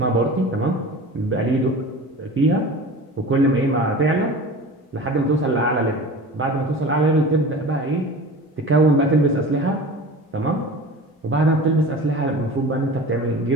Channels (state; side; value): normal; both; correlation 0.36